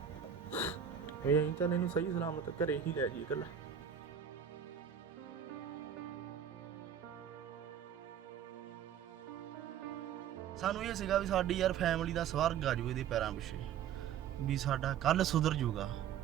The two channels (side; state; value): left; quieter; 8.7 dB